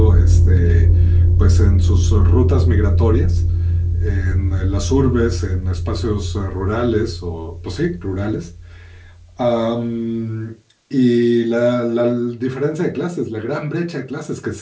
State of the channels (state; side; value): identical; both; correlation 1.00